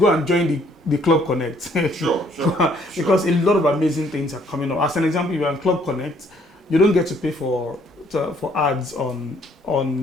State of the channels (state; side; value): normal; both; correlation 0.64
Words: and join the Club Connect. Sure. Because a lot of amazing things are coming up. As an example, if you're on Club Connect, you don't get to pay for ads on